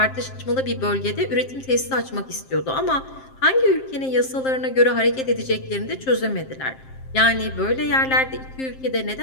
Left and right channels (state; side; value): late; right; 7.6 ms